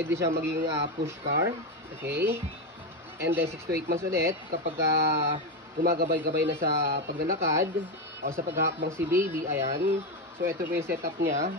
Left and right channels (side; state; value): both; normal; correlation 0.11